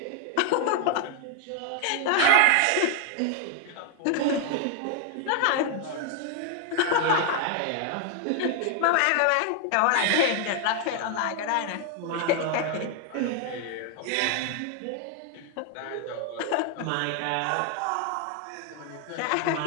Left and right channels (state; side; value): different; both; correlation 0.00